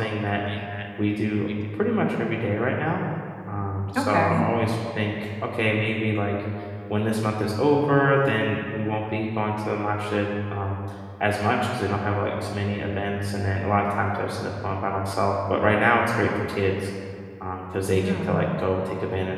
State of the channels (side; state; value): both; identical; correlation 1.00